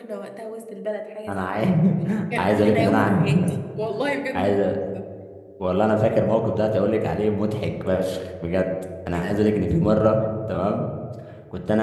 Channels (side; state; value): both; identical; correlation 1.00